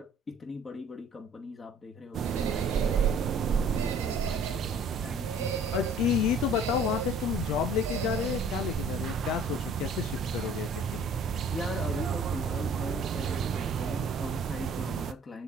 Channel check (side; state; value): both; normal; correlation 0.52